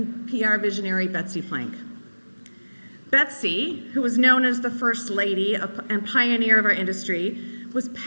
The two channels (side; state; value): both; inverted; correlation -1.00